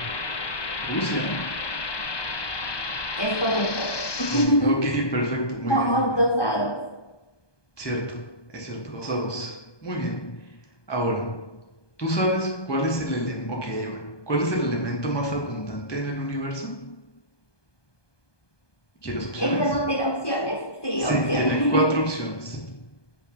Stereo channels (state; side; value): late; right; 1.2 ms